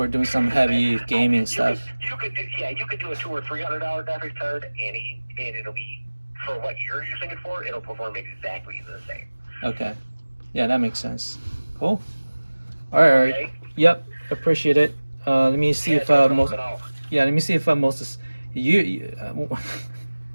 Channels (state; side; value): inverted; both; correlation -1.00